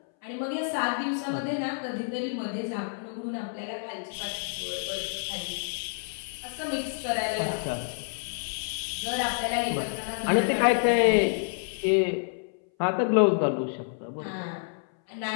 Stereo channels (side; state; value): right; silent; 59 dB below the other